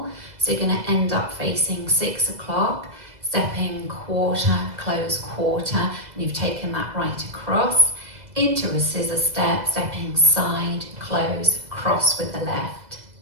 So you're going to end up facing 6 o'clock, stepping quarter, close quarter, and you've taken that right across. Into a scissor step, stepping side, close, cross with the left.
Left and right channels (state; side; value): late; left; 2.0 ms